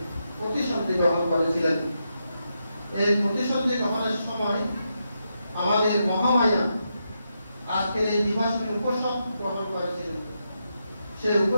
প্রতিসন্ধি গ্রহণ করেছিলেন। এই প্রতিসন্ধি গ্রহণের সময় আমাদের মহামায়া আজকের এই দিবসে উপসদ গ্রহণ করেছিলেন। সেই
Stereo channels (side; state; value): both; inverted; correlation -0.84